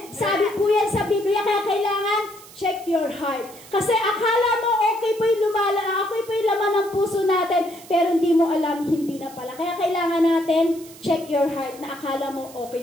Sabi po yan sa Biblia, kaya kailangan check your heart. Kasi akala mo okay po yung laman ng puso natin, pero hindi mo alam, hindi na pala. Kaya kailangan natin check your heart na akala mo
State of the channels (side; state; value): right; noise; hiss, 20 dB below the sound